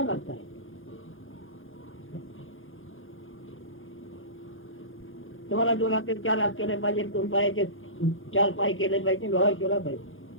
करता आहे. तुम्हाला 2 हात 4 हात केले पाहिजे, 2 पायाचे 4 पाय केले पाहिजे, व्यवहार केला पाहिजे.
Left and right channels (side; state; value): right; late; 0.58 ms